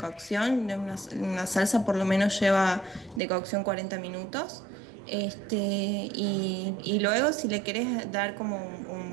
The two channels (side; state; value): left; drops out; at 3.2 s